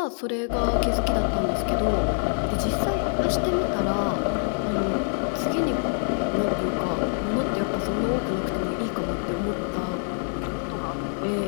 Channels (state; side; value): silent; right; 58 dB below the other